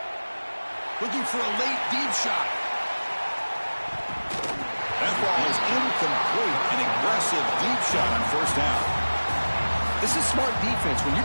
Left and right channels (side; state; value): both; inverted; correlation -1.00